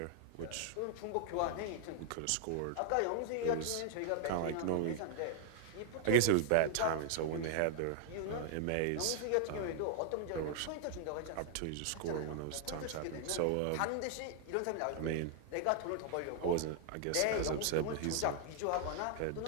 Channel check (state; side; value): different; both; correlation 0.00